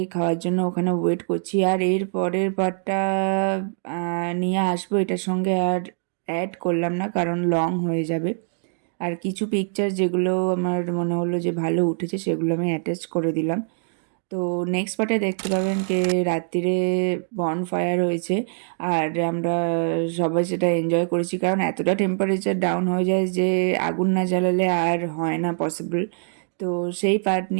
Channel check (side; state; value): left; silent; digital silence